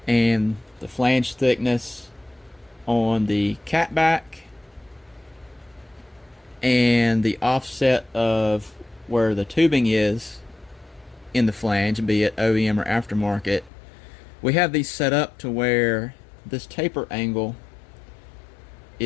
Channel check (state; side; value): drops out; right; at 13.7 s